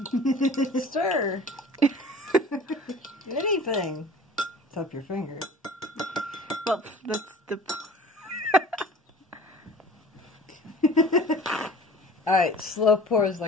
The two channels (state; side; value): normal; both; correlation 0.43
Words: Stir. Anything. Tap your finger. Well, that's the. Alright, slow pours